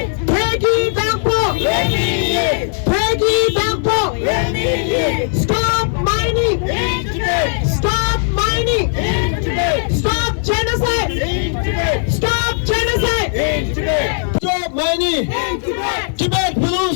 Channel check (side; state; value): right; silent; digital silence